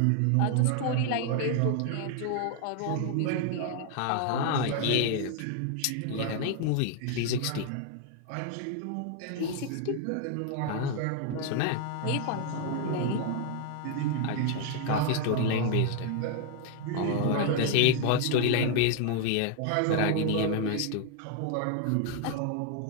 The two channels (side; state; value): both; different; correlation 0.00